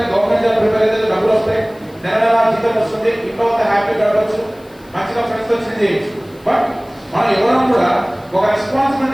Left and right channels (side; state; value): left; noise; hiss, 29 dB below the sound